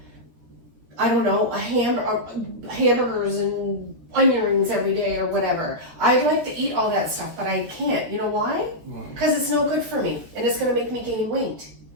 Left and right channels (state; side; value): late; left; 13 ms